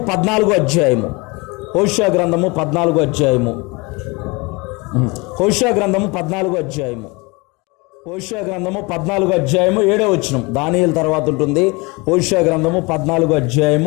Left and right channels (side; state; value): right; quieter; 26.8 dB